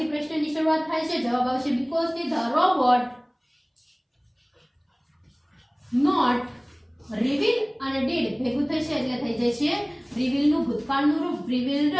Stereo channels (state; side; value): identical; both; correlation 1.00